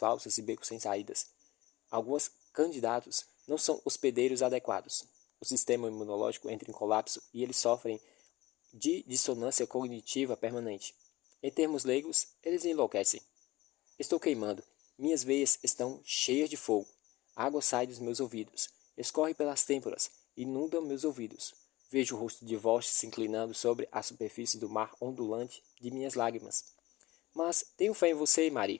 e becos sem saídas. Alguns candidatos não são hospedeiros adequados. O sistema imunológico entra em colapso e eles sofrem de dissonância cognitiva permanente. Em termos leigos, eles enlouquecem. Estou queimando. Minhas veias estão cheias de fogo. A água sai dos meus ouvidos. Escorre pelas têmporas. Inunda meus ouvidos. Vejo o rosto de Vosh se inclinando sobre a superfície do mar ondulante de minhas lágrimas. Mas tenho fé em você,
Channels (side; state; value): right; quieter; 18.8 dB